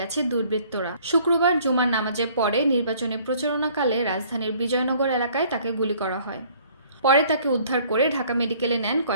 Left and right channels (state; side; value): inverted; both; correlation -0.57